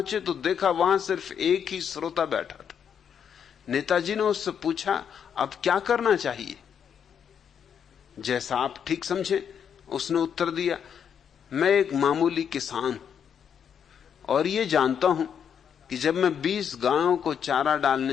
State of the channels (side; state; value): right; quieter; 7.9 dB